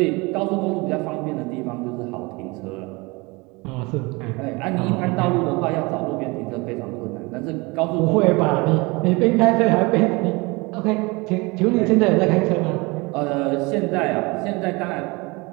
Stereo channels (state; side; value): quieter; left; 25.6 dB